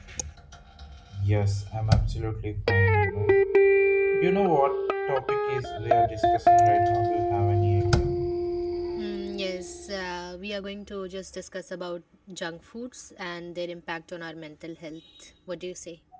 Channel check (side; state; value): both; identical; correlation 1.00